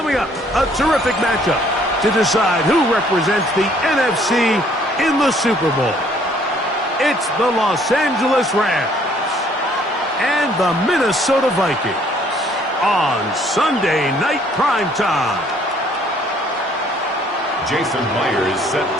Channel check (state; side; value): normal; both; correlation 0.61